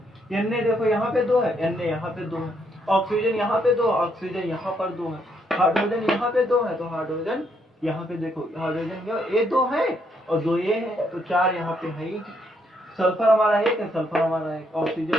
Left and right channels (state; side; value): normal; both; correlation 0.74